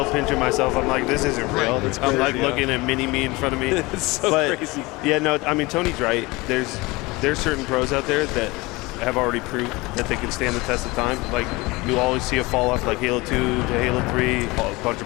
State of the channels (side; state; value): right; quieter; 22.9 dB